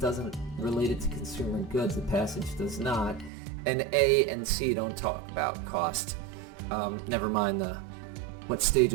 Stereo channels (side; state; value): left; drops out; at 3.3 s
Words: doesn't relate it to consumer goods. The passage does not. And A and C don't talk about cost. Never mind what stage